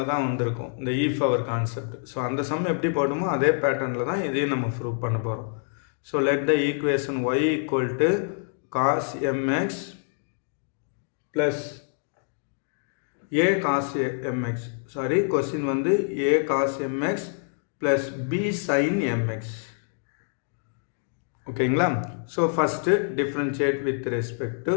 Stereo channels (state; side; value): silent; right; digital silence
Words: தான் வந்திருக்கும், இந்த e power கான்செப்ட். ஸோ அந்த சம் எப்படி போடுமோ அதே பேட்டர்னில் தான் இதையும் நம்ம ப்ரூவ் பண்ண போகிறோம். So let the equation y equal to cos mx plus a cos mx. Sorry, question வந்து a cos mx plus b sin mx. ஓகேங்களா? So first differentiate with respect to